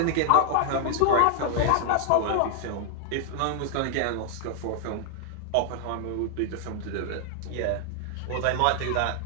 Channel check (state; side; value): different; both; correlation 0.00